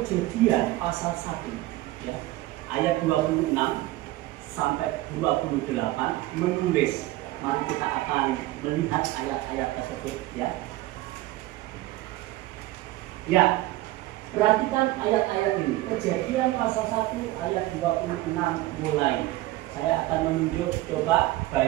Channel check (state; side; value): quieter; left; 17.4 dB